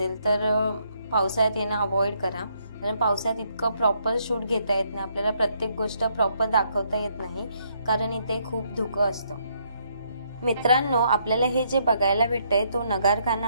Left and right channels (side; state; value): both; inverted; correlation -0.72